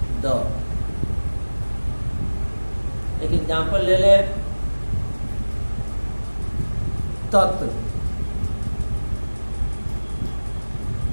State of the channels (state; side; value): inverted; both; correlation -1.00